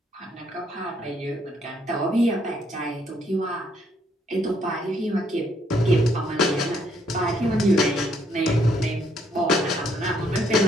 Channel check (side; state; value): both; normal; correlation 0.70